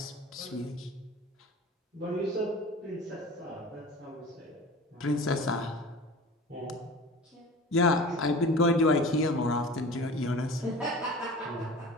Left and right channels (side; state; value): both; normal; correlation 0.38